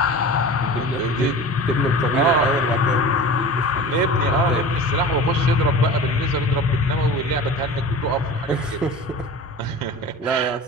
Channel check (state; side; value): normal; both; correlation 0.36